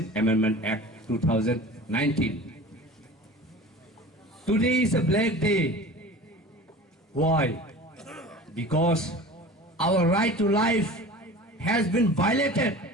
Amendment Act 2019. Today is a black day. Why? Because our right to life has been violated.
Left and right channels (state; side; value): normal; both; correlation 0.38